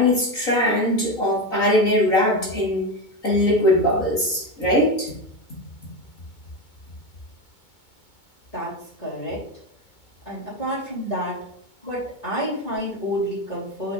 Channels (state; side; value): late; right; 2.2 ms